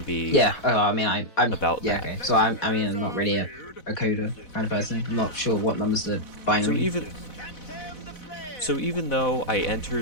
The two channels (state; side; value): late; right; 4.0 ms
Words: be. Yeah. Oh, I mean, I'm About yeah. that. Okay. So I'm not really a coder kind of person. I'm not sure what numbers the binary. So even though I